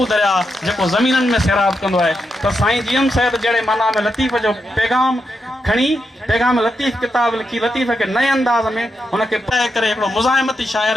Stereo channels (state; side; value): normal; both; correlation 0.85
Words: दरिया जेको ज़मीननि में सैराब कंदो आहे त साईं जीएम साहिब जहिड़े माना में लतीफ़ जो पैगाम खणी पैगाम लतीफ़ किताब लिखी लतीफ़ खे नए अंदाज़ में हुनखे पढ़ाए करे हिकिड़ो मुज़ाहिमती